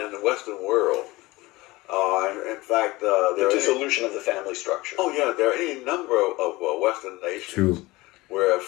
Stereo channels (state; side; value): quieter; right; 20.8 dB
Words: it in the Western world. In fact, The dissolution of the family structure. Oh yeah, there are any number of Western nations where